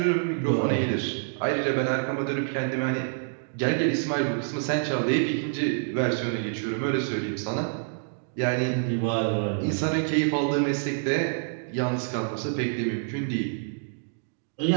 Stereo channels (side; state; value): left; silent; digital silence